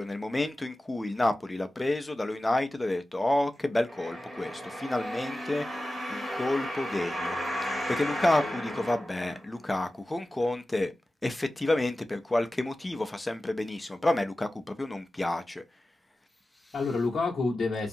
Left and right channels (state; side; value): normal; both; correlation 0.95